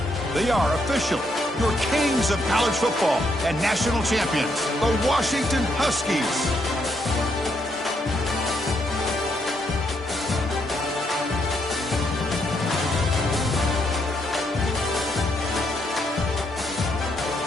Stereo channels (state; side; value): normal; both; correlation 0.76